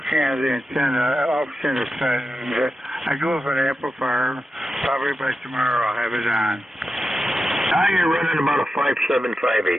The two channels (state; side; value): normal; both; correlation 0.90